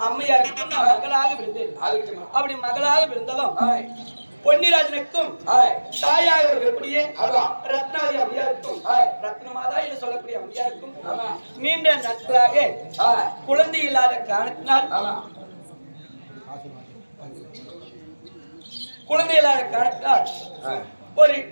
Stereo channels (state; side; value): inverted; both; correlation -1.00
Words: அம்மையாருக்கும் நான் மகளாக விழுந்தேன். அப்படி மகளாக விழுந்ததும் பொன்னிராஜனுக்கும் தாயாக இருக்கக்கூடிய ரத்னாதி அம்மையாருக்கும் ரத்னமாதா என்று சொல்லக்கூடிய அம்மையாருக்கும் நீண்ட நாட்களாக குழந்தை இல்லாத காரணத்தினால் குழந்தை இல்லாத காரணத்தினால் ஒரு